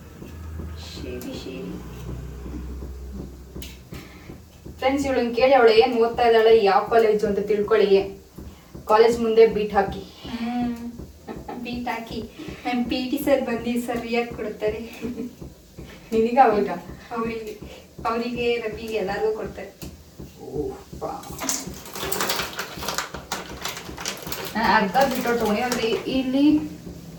ಫ್ರೆಂಡ್ಸ್, ಇವಳನ್ನ ಕೇಳಿ ಅವಳು ಏನು ಓದ್ತಾ ಇದ್ದಾಳೆ, ಯಾವ ಕಾಲೇಜು ಅಂತ ತಿಳ್ಕೊಳ್ಳಿ. ಕಾಲೇಜ್ ಮುಂದೆ ಬೀಟ್ ಹಾಕಿ ಬೀಟ್ ಹಾಕಿ ನಮ್ಮ PT ಸರ್ ಬಂದು ಸರಿಯಾಗಿ ಕೊಡ್ತಾರೆ. ನಿನಗ ಅವಾಗ ಅವರಿಗೆ ರವಿಗೆ ಎಲ್ಲರಿಗೂ ಕೊಡ್ತಾರೆ. ನಾನು ಅರ್ಧ ಬಿಟ್ಟು ತೊಗೊಂಡು ಅಂದ್ರೆ ಇಲ್ಲಿ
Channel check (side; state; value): both; identical; correlation 1.00